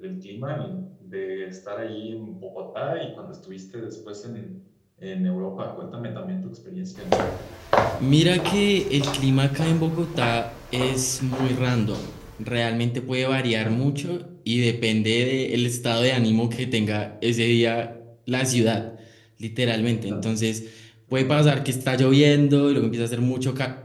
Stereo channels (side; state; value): both; identical; correlation 1.00